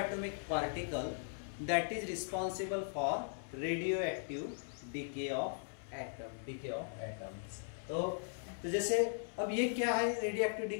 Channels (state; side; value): silent; right; 52 dB below the other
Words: particle that is responsible for radioactive decay of atom. Decay of atoms. तो जैसे अब ये क्या है रेडियोएक्टिव